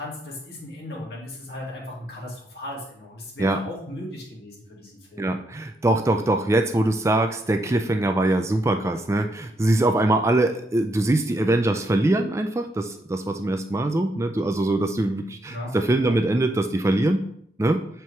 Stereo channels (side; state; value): both; normal; correlation 0.78